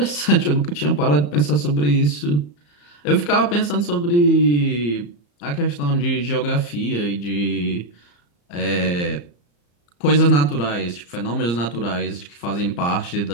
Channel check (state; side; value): late; right; 34 ms